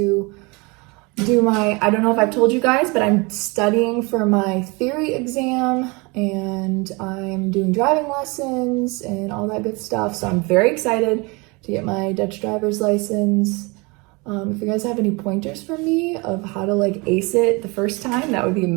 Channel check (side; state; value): left; quieter; 27.3 dB